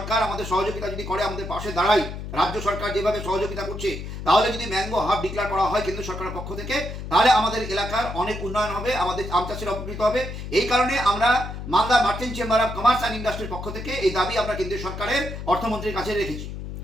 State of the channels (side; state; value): left; noise; hum, 8 dB below the sound